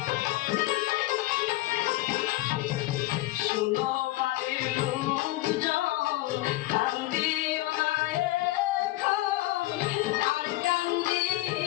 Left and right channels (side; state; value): right; quieter; 18.2 dB